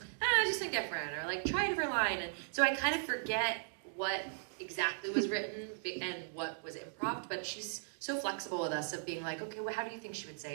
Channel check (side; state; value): left; silent; digital silence